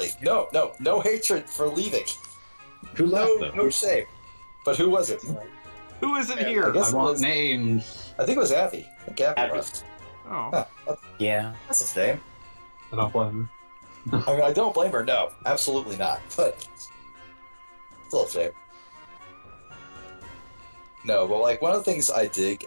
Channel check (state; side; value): inverted; both; correlation -1.00